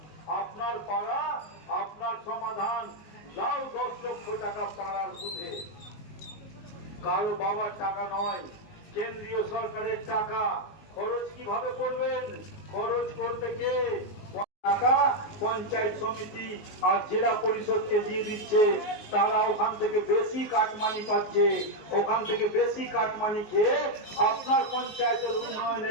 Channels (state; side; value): late; right; 19 ms